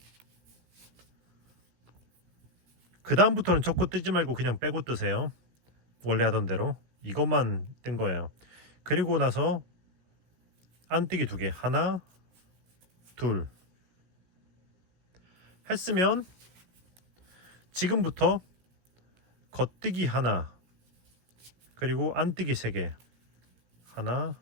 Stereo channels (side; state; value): left; late; 17 ms